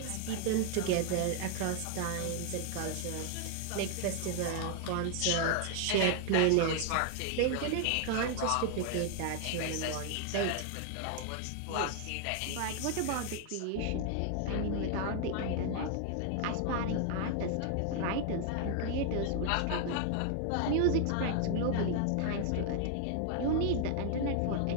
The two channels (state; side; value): different; both; correlation 0.00